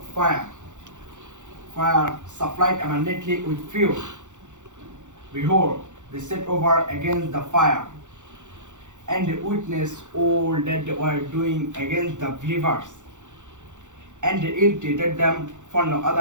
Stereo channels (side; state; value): left; late; 0.85 ms